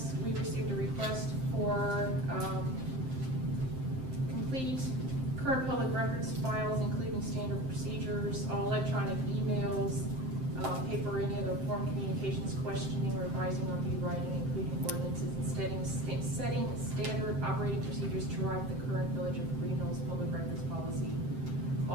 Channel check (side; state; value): left; late; 7.7 ms